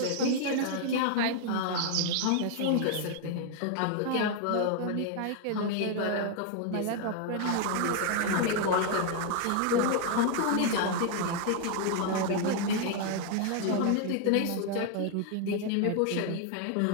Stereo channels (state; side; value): different; both; correlation 0.00